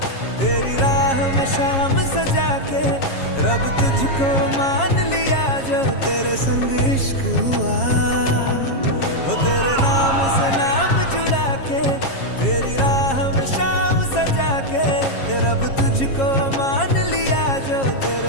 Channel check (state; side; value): late; right; 7.4 ms